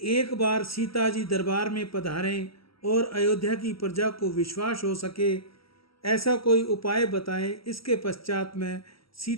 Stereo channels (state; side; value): late; right; 0.75 ms